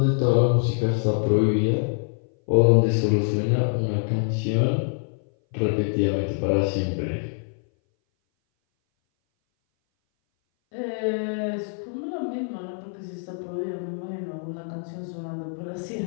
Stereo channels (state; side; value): silent; right; 59 dB below the other